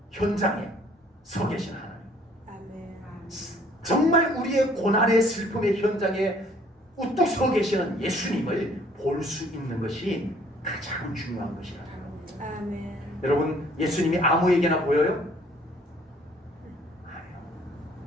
현장에 서 계신 하나님. 아멘. 정말 우리의 고난의 슬픔의 현장에 우뚝 서 계시는 예수님을 볼 수 있는 것이 가장 중요한 것이라고요. 아멘. 여러분, 예수님이 아무에게나 보여요?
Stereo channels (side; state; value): both; normal; correlation 0.59